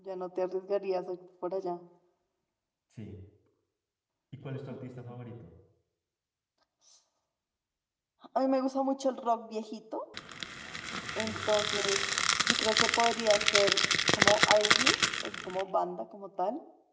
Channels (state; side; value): identical; both; correlation 1.00